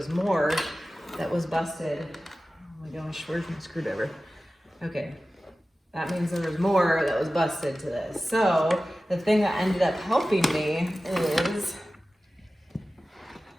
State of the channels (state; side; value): normal; both; correlation 0.95